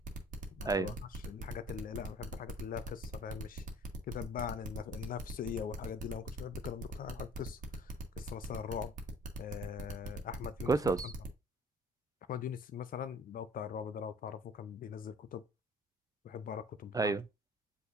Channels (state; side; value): normal; both; correlation 0.51